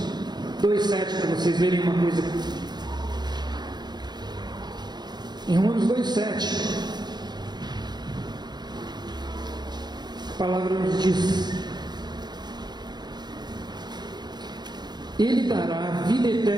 2,7 para vocês verem uma coisa. Em Romanos 2,7, a palavra nos diz: Ele dará vida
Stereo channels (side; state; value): left; late; 0.21 ms